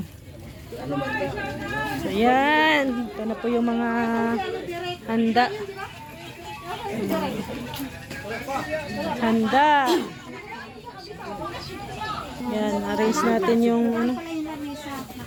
So ayan, ito na po yung mga handa. Handa. Yan, arrange natin yung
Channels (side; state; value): both; identical; correlation 1.00